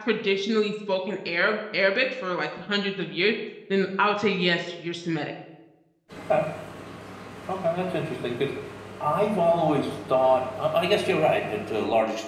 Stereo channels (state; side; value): identical; both; correlation 1.00